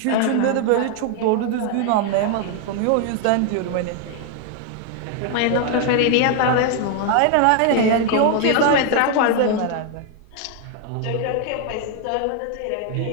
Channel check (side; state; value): both; different; correlation 0.01